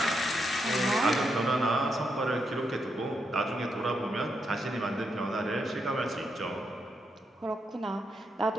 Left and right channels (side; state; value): both; normal; correlation 0.81